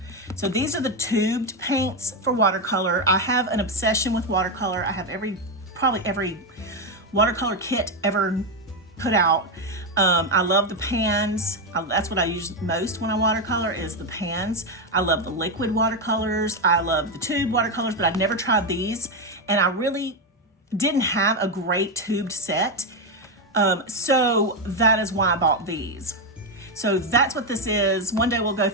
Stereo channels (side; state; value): both; normal; correlation 0.07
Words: So these are the tubed paints for watercolor. I have an obsession with watercolor. I have probably every watercolor kit ever put out. I love the pans. That's what I use most when I watercolor, is the pans. I love the liquid watercolors. I love the tube watercolors, but I've never tried these. And I really didn't have a great tubed set. So that is why I bought these. So that's what this is. One day we'll go